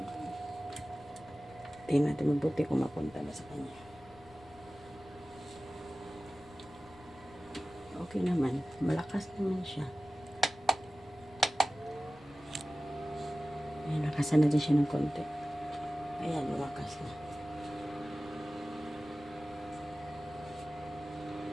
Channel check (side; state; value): left; noise; rumble, 24 dB below the sound